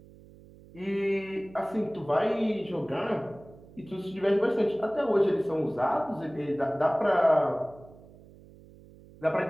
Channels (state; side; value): noise; right; hum, 22 dB below the sound